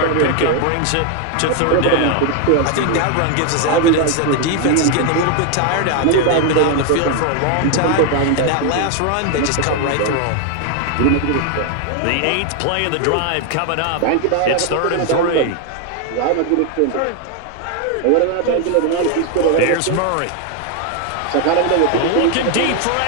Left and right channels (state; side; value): different; both; correlation 0.01